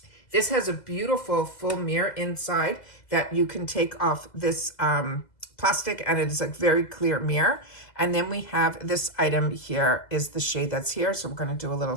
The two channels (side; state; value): right; late; 2.0 ms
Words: This has a beautiful full mirror inside that you can take off this plastic, and it is a very clear mirror. And then we have this item here is the shade that's here. So we're going to do a little